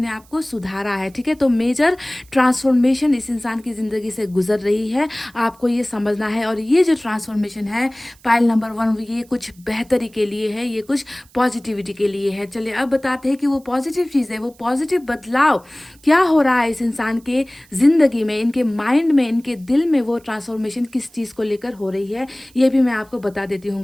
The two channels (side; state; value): right; noise; hiss, 28 dB below the sound